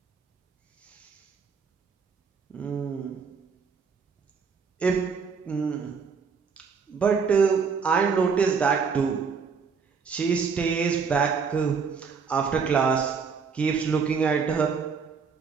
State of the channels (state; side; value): quieter; left; 5.7 dB